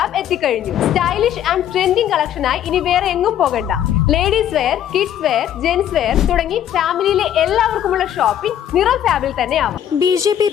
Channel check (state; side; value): quieter; right; 10.5 dB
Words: എത്തിക്കഴിഞ്ഞു. സ്റ്റൈലിഷ് ആൻഡ് ട്രെൻഡിംഗ് കളക്ഷനായി ഇനി വേറെ എങ്ങും പോകണ്ട. Ladies wear, kids wear, gents wear തുടങ്ങി ഫാമിലിയിലെ എല്ലാവർക്കുമുള്ള ഷോപ്പിംഗ് നിറം ഫാബിൽ തന്നെ ആവാം. BJP